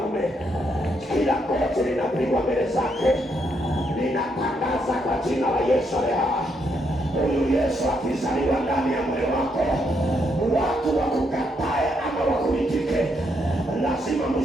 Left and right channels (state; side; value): normal; both; correlation 0.76